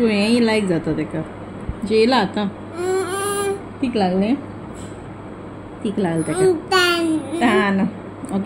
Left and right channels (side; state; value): both; identical; correlation 1.00